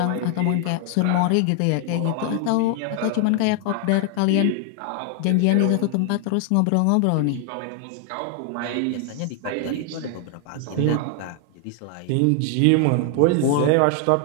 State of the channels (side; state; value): both; different; correlation 0.00